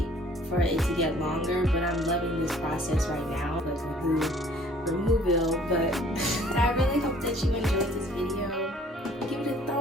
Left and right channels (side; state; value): both; normal; correlation 0.56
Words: for it to get longer, but I'm loving this process right now, like ᴜᴜ𴑍, but I really hope that you enjoyed this video. Give it a